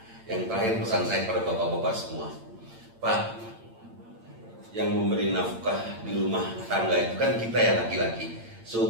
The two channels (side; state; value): left; late; 8.8 ms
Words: yang terakhir pesan saya pada bapak-bapak semua, Pak, yang memberi nafkah di rumah tangga itu kan kita ya laki-laki,